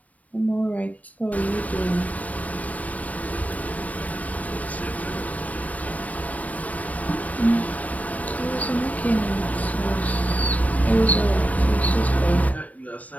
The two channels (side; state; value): right; late; 0.070 ms